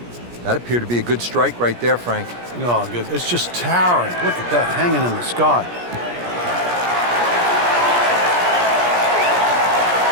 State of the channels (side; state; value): left; late; 17 ms